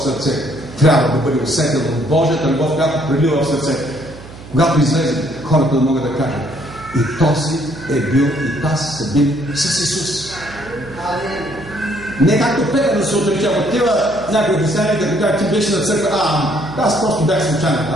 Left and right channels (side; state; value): right; noise; hum, 16 dB below the sound